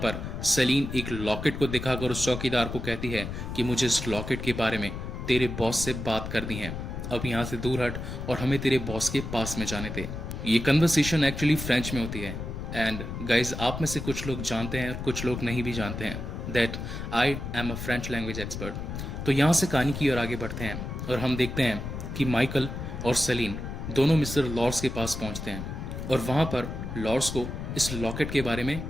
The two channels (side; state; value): left; noise; rumble, 6 dB below the sound